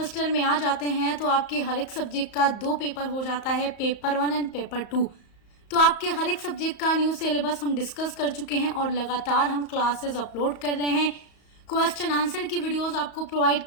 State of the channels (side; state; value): right; late; 34 ms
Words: में आ जाते हैं तो आपके हर एक सब्जेक्ट का 2 पेपर हो जाता है, पेपर 1 एंड पेपर 2। तो आपके हर एक सब्जेक्ट का न्यू सिलेबस हम डिस्कस कर चुके हैं और लगातार हम क्लासेस अपलोड कर रहे हैं। क्वेश्चन आंसर की वीडियोस आपको प्रोवाइड